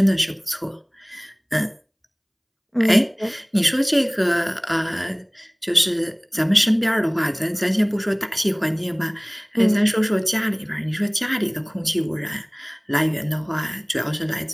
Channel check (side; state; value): both; identical; correlation 1.00